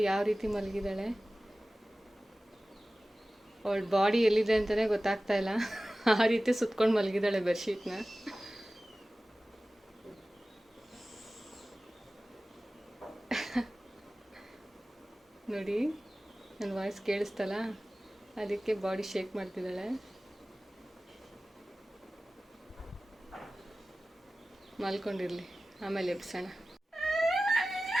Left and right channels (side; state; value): both; normal; correlation 0.96